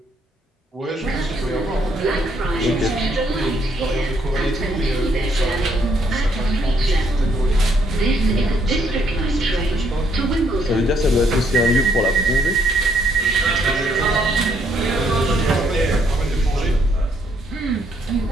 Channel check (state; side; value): normal; both; correlation 0.70